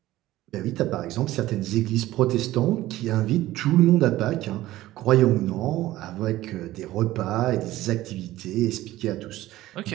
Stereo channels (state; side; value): quieter; left; 15.9 dB